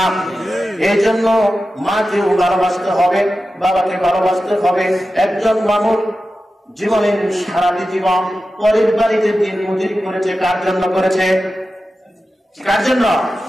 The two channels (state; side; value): normal; both; correlation 0.93